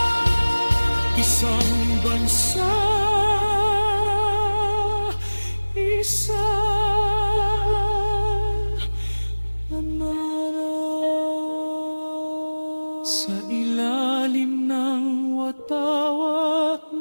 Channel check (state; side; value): inverted; both; correlation -1.00